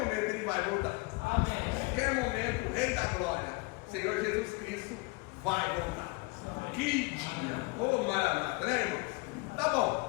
Ele vai voltar. Amém. A qualquer momento vai voltar. Que dia! Ô Maranata, né, irmãos? Tá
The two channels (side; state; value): right; quieter; 27.4 dB